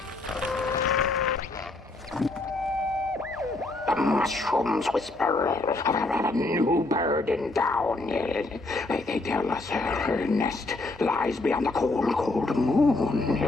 Mushrooms whisper of a new bird in down. They tell us her nest lies beyond the cold, cold moon.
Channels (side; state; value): right; quieter; 3.0 dB